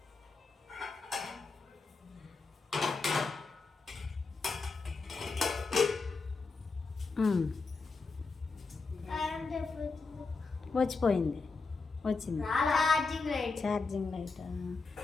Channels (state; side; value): quieter; right; 4.2 dB